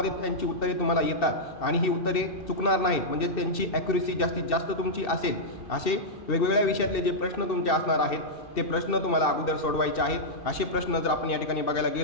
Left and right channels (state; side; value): late; right; 2.7 ms